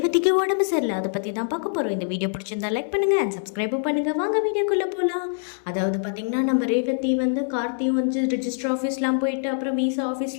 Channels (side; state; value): right; silent; digital silence